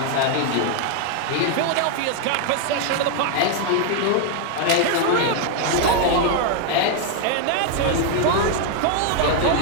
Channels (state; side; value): different; both; correlation 0.00